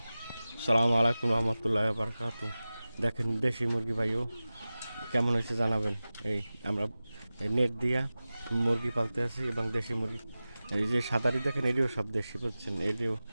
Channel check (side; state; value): both; inverted; correlation -0.96